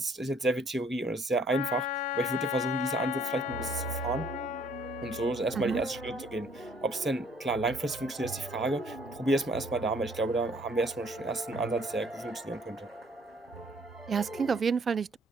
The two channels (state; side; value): normal; both; correlation 0.61